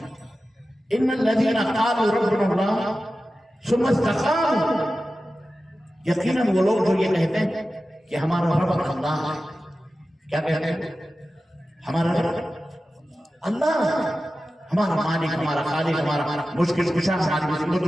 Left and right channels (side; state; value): both; normal; correlation 0.94